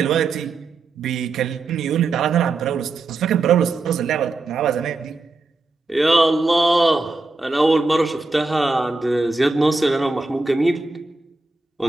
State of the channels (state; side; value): quieter; left; 3.4 dB